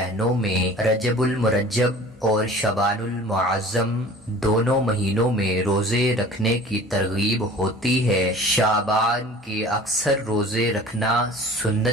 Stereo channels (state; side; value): normal; both; correlation 0.45